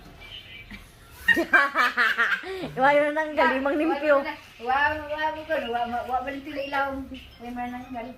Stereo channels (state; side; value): identical; both; correlation 1.00